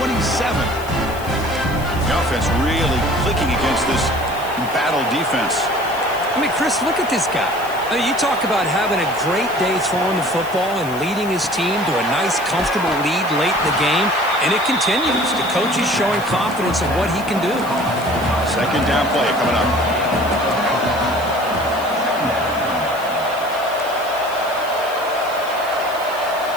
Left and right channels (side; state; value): left; noise; hiss, 17 dB below the sound